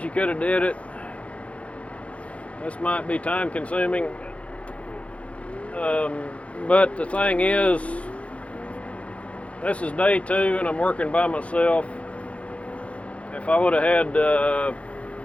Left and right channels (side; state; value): right; late; 0.063 ms